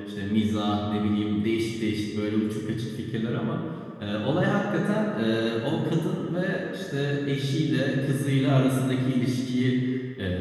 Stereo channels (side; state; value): both; identical; correlation 1.00